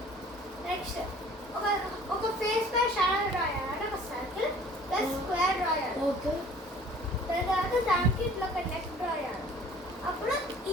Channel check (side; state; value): both; normal; correlation 0.51